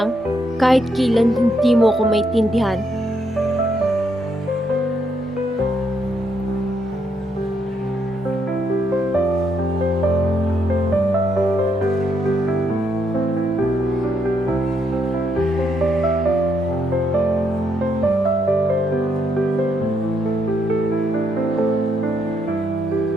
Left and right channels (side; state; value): both; normal; correlation 0.76